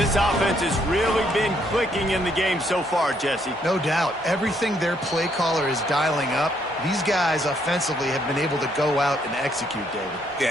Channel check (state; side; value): normal; both; correlation 0.71